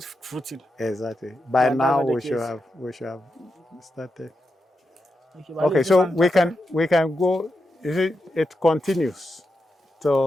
fruiting. Exactly. By now we should have started. Okay, so we can go. You see, it continues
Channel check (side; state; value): both; normal; correlation 0.86